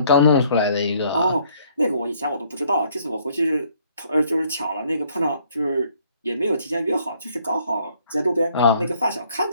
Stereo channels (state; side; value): inverted; both; correlation -0.64